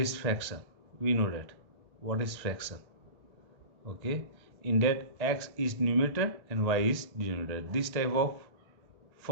fraction. We know that. What is fraction? Okay. In that x is numerator and y is denominator. This type of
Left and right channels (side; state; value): left; late; 1.6 ms